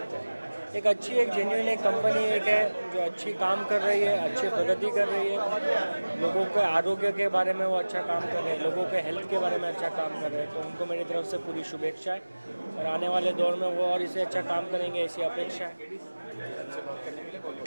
एक अच्छी एक जेन्युइन एक कंपनी एक है जो अच्छी काम कर रही है, अच्छी प्रगति कर रही है, लोगों के आरोग्य के बारे में वो अच्छा काम कर रहे हैं, लोगों के हेल्थ के बारे में अच्छा काम कर रहे हैं। तो उनको मेरी तरफ से पूरी शुभेच्छा है और आने वाले दौर में वो और इसे अच्छा काम करेंगे, ऐसी अपेक्षा है।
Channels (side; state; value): both; inverted; correlation -1.00